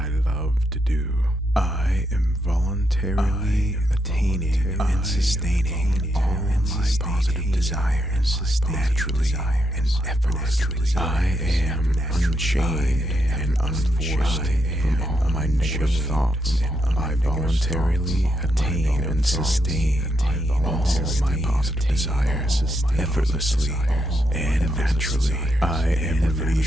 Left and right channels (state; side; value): normal; both; correlation 0.80